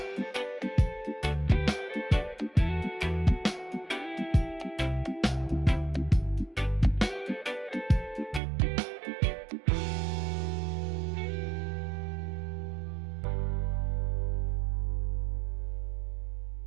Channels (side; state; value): left; drops out; at 8.4 s